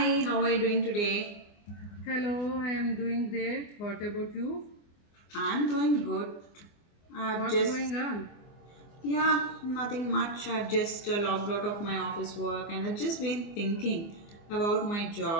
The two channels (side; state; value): right; late; 24 ms